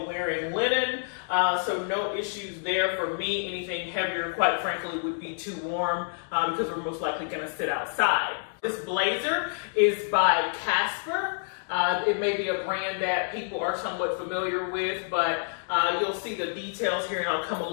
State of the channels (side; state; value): right; silent; digital silence